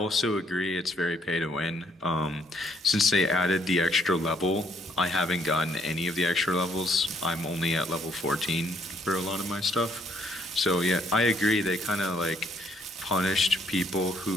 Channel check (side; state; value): both; normal; correlation 0.67